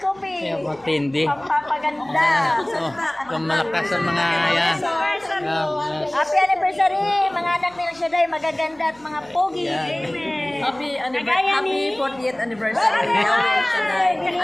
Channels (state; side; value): noise; right; hum, 29 dB below the sound